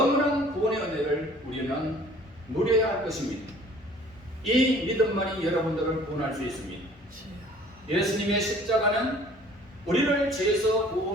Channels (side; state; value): both; normal; correlation 0.52